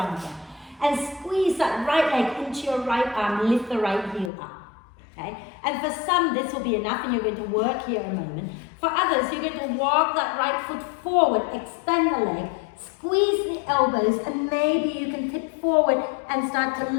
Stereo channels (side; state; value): right; drops out; at 4.3 s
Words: And squeeze that right leg into your right arm, lift the right heel up. Okay? And for some, this will be enough and you're going to work here a moment. For others, you're going to walk that right foot forward, extend the leg, squeeze the elbows, and maybe you can tip forward and start to